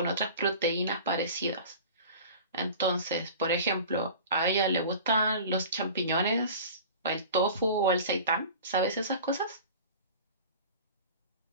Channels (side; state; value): both; inverted; correlation -0.39